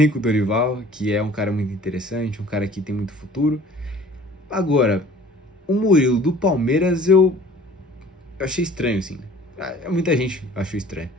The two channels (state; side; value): normal; both; correlation 0.49